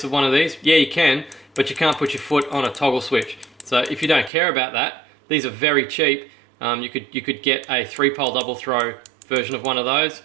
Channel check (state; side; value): drops out; left; at 4.3 s